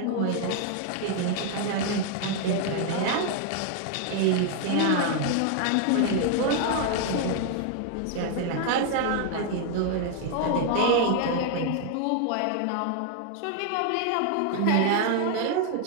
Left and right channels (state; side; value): different; both; correlation 0.00